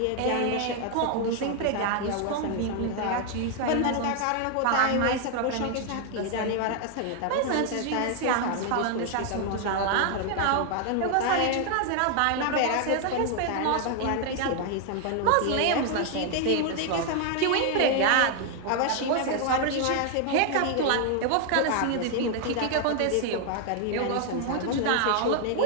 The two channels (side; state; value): both; different; correlation 0.00